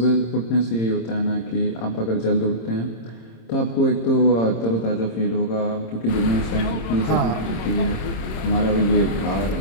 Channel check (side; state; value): right; late; 26 ms